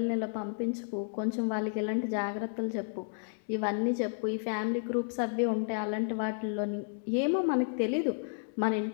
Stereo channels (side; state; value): right; silent; digital silence